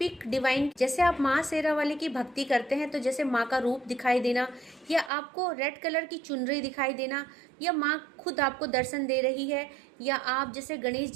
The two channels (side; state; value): left; drops out; at 5.1 s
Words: डिवाइन, जैसे आप माँ शेरा वाली की भक्ति करते हैं तो जैसे माँ का रूप दिखाई देना, या आपको रेड कलर की चुनरी दिखाई देना, या माँ खुद आपको दर्शन दे रही है, या आप जैसे गणेश